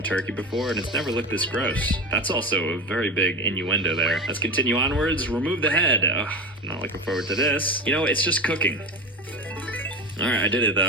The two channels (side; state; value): both; normal; correlation 0.26